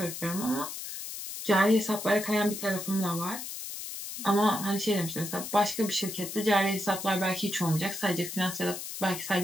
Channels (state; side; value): noise; left; hiss, 8 dB below the sound